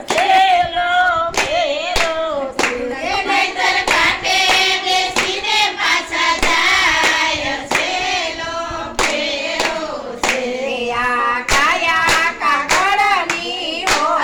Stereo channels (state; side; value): identical; both; correlation 1.00